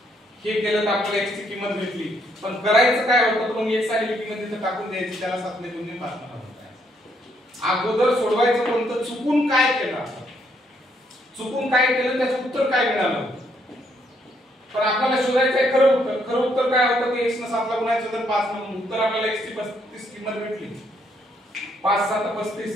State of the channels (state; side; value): normal; both; correlation 0.72